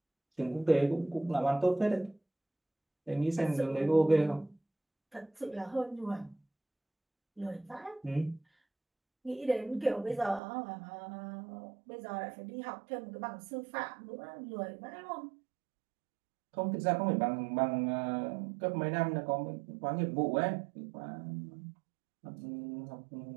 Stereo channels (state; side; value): drops out; left; at 10.4 s